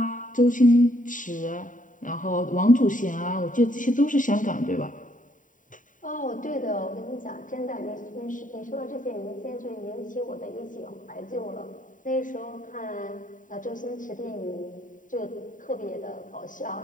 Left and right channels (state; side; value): late; right; 0.38 ms